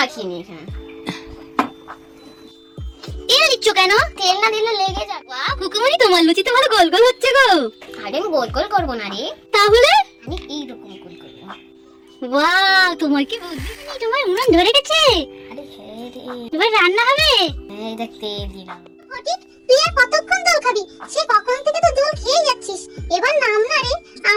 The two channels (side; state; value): both; identical; correlation 1.00